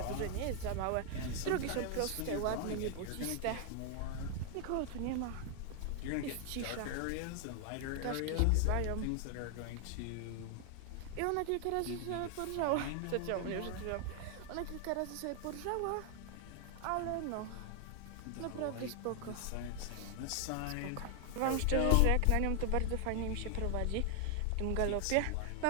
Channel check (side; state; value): both; different; correlation 0.00